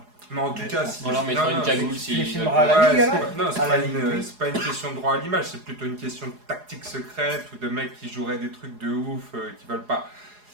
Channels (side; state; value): left; late; 4.8 ms